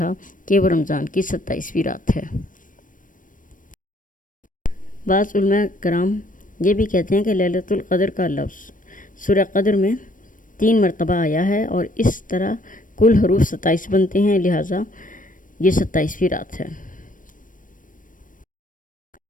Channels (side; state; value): right; late; 0.38 ms